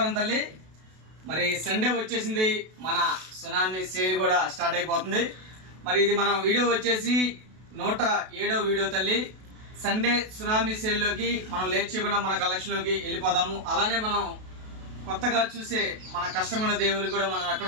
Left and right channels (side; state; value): left; late; 32 ms